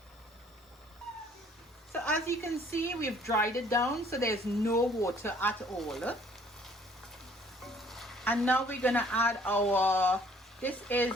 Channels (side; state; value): both; normal; correlation 0.59